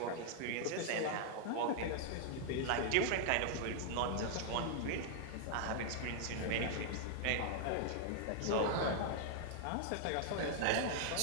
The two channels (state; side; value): different; both; correlation -0.01